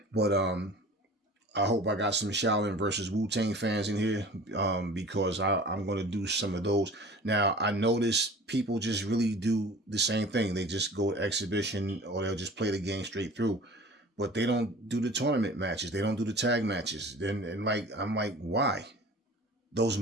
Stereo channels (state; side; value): normal; both; correlation 0.43